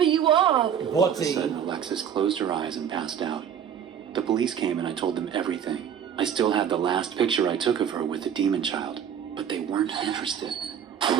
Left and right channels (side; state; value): left; quieter; 8.5 dB